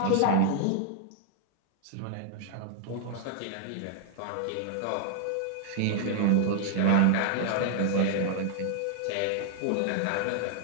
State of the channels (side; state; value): both; different; correlation 0.00